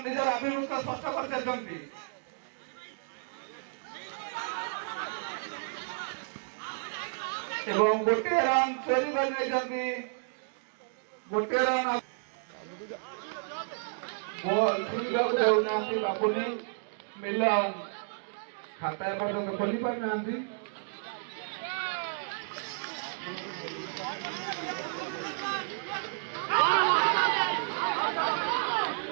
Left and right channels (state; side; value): silent; left; digital silence